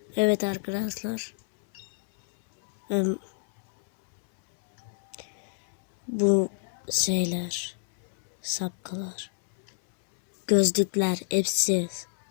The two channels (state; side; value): silent; right; 60 dB below the other